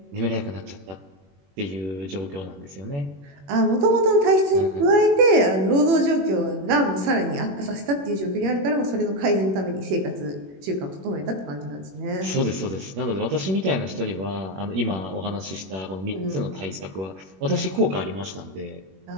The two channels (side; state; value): left; late; 21 ms